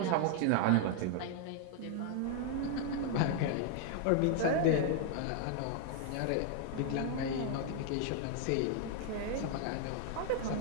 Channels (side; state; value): both; different; correlation 0.00